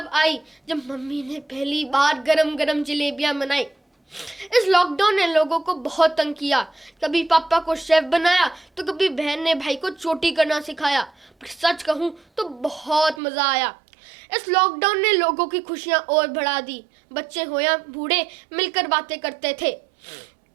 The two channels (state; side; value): drops out; left; at 13.2 s